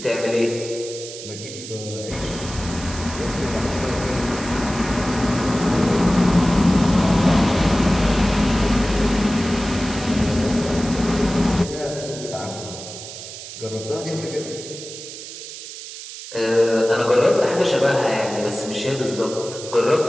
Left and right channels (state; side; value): noise; right; hiss, 12 dB below the sound